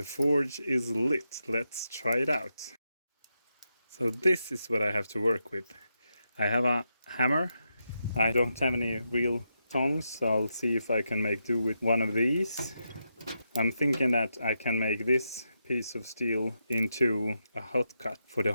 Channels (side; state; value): both; inverted; correlation -0.85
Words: forge is lit. Let's try it out. So this is what I have to work with. I have a hammer. I don't have any real tongs, so I'll see if I can make do with one of these. I'm thinking that I can make this piece of steel into a hot cut for the